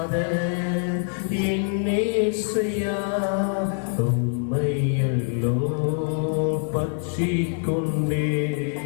என்னேசையா, உம்மையல்லோ பற்றி கொண்டே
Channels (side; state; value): right; silent; 62 dB below the other